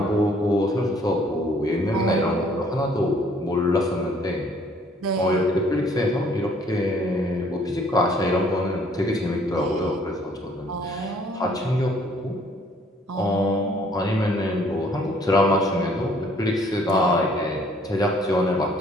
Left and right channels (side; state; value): both; normal; correlation 0.60